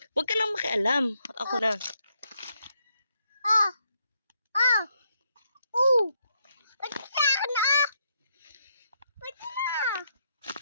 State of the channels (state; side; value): inverted; both; correlation -0.77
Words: Huwag ka lang makialam. Ako na. Ba't ka na? Ba't na?